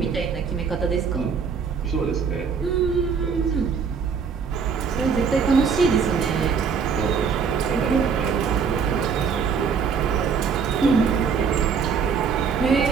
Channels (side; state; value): left; quieter; 6.1 dB